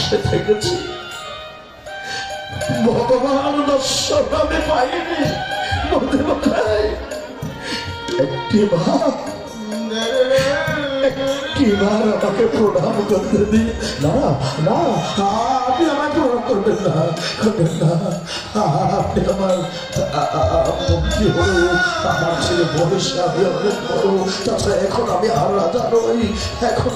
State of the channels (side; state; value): both; identical; correlation 1.00